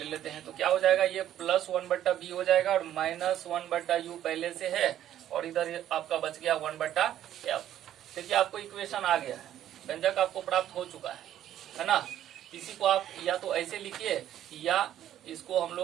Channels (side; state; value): left; quieter; 11.6 dB